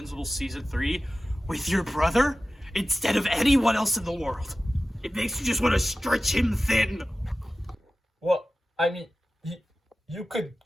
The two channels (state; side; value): normal; both; correlation 0.94